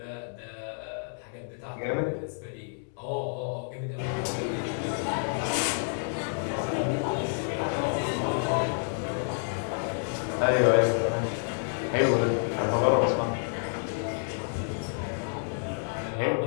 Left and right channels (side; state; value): right; silent; digital silence